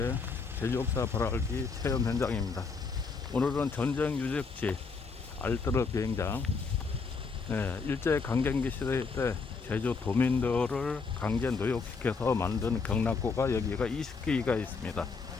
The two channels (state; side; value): quieter; right; 4.8 dB